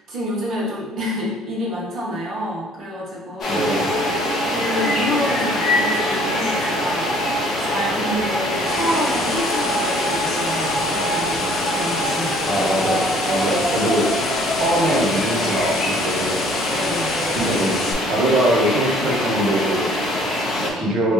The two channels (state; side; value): normal; both; correlation 0.57